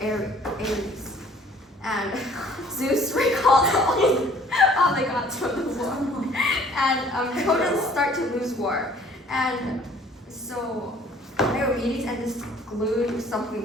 Ares. And Zeus recalls all the gods from the war. And Trojans start to lose war. And so Diomedes and this glue something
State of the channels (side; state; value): both; normal; correlation 0.55